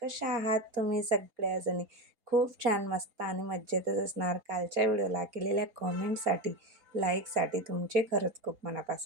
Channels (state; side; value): late; left; 4.3 ms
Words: कशा आहात तुम्ही सगळ्याजणी? खूप छान, मस्त आणि मज्जेतच असणार. कालच्या व्हिडिओला केलेल्या कॉमेंटसाठी, लाईकसाठी तुमचे खरंच खूप